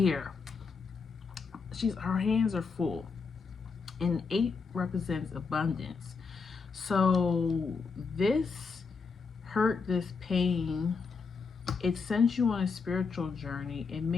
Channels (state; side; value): quieter; right; 5.0 dB